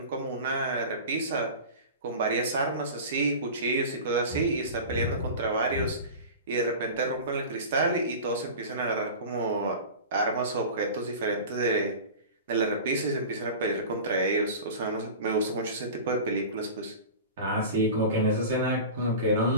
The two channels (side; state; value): both; inverted; correlation -0.33